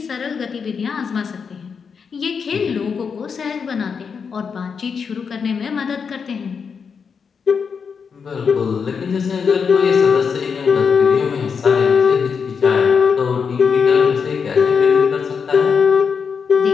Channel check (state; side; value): quieter; right; 6.0 dB